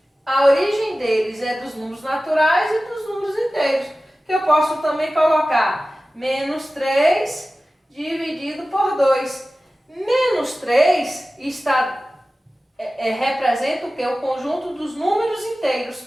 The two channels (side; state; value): both; normal; correlation 0.96